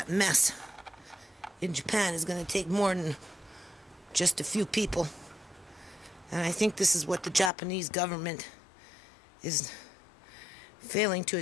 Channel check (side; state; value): right; drops out; at 7.5 s